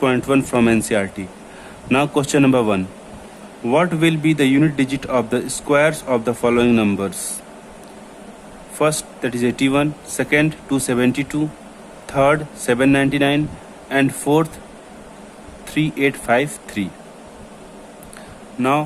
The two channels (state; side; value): identical; both; correlation 1.00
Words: from NCERT. Now question number 1. What will be the unit digit of the squares of the following numbers? First, that is 81, second 272, third 799 and fourth 3853.